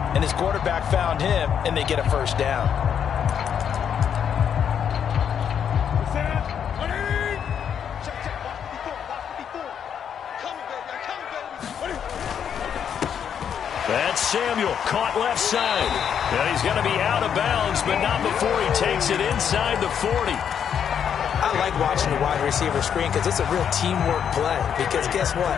and his quarterback found him, and they get a 1st down. That's Samuel, caught left side. And he's going to be out of bounds, but not before he takes it inside the 40. I like watching the wide receiver screen because it's a real teamwork play. Because guess what?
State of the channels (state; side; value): quieter; right; 8.2 dB